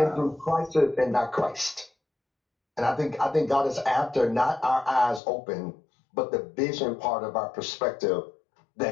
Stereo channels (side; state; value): right; drops out; at 5.2 s